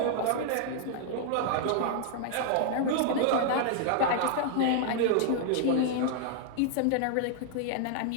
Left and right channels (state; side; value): different; both; correlation 0.00